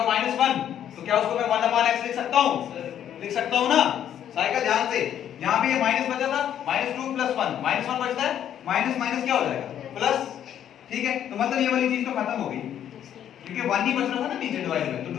-1. तो क्या उसको मैं 1 upon x लिख सकता हूँ? लिख सकता हूँ ना. साइकिल ध्यान से, यहाँ पे ये माइनस बचा था, -2 plus 1, -1 बचता है, माइनस माइनस क्या हो जाएगा? प्लस, ठीक है. तो मतलब ये वाली चीज तो खत्म हो गई, क्योंकि 1 ही बच रहा था ना नीचे डिवाइड में. तो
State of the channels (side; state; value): right; quieter; 10.1 dB